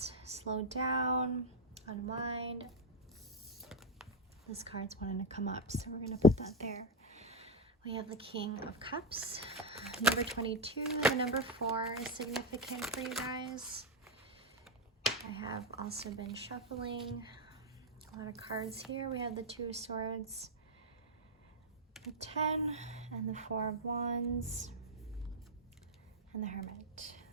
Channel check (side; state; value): both; normal; correlation 0.04